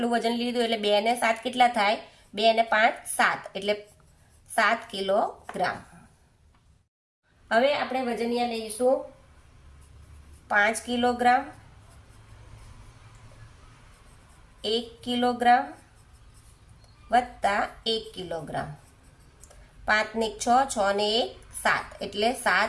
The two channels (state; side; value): identical; both; correlation 1.00